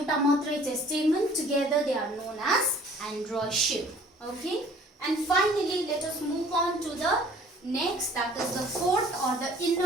matrai cha stamen, together they are known as androecium. Okay, and finally let us move on to the next, that is the fourth or the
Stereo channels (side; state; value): both; normal; correlation 0.53